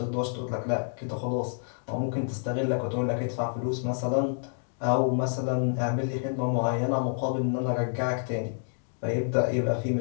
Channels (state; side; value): silent; right; digital silence